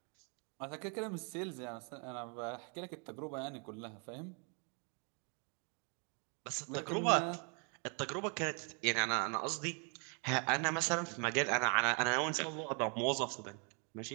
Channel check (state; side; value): quieter; left; 37.2 dB